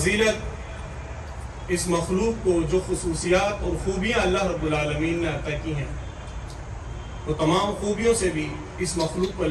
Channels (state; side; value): identical; both; correlation 1.00